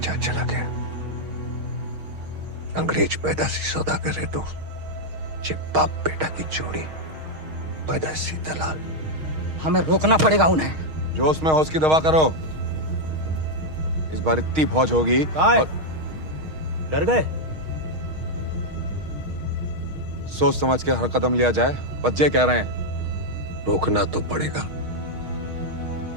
चला गया। अंग्रेज पैदाशी सौदागर है तो बाप बेटा की जोड़ी पैदाशी दलाल। हमें रोकना पड़ेगा उन्हें। जोश में होश की दवा करो। इस बार इतनी फौज होगी और डर गए? सोच समझ के हर कदम लिया जाए। बच्चे कह रहे हैं। रोकना तो पड़ेगा।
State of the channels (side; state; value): left; late; 6.4 ms